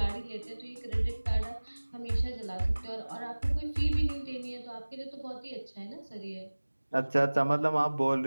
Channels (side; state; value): both; inverted; correlation -1.00